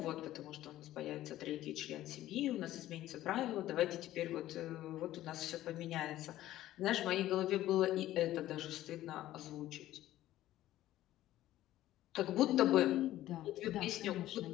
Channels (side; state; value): right; quieter; 14.3 dB